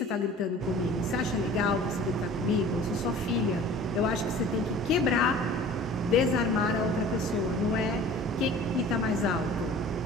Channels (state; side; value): normal; both; correlation 0.45